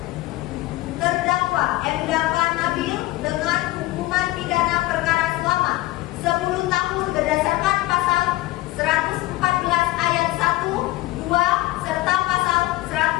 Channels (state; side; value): quieter; right; 18.4 dB